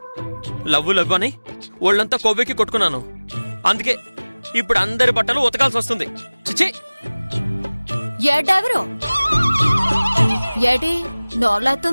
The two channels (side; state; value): both; inverted; correlation -1.00